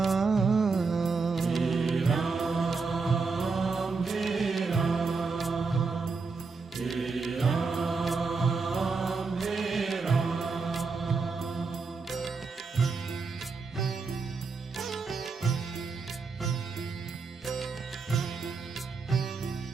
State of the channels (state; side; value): quieter; left; 4.5 dB